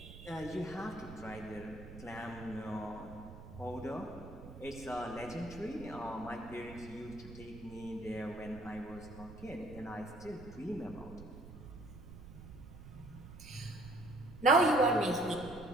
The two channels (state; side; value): noise; right; rumble, 14 dB below the sound